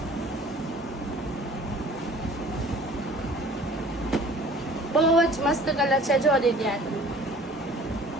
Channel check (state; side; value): normal; both; correlation 0.49